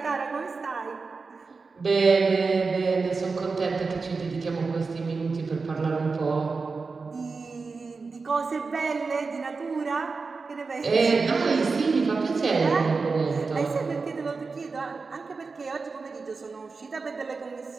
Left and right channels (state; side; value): quieter; left; 4.4 dB